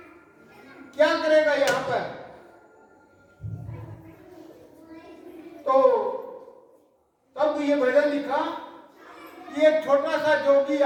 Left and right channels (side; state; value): both; identical; correlation 1.00